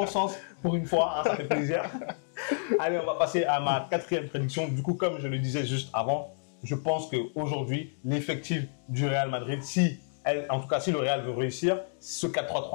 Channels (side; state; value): right; silent; digital silence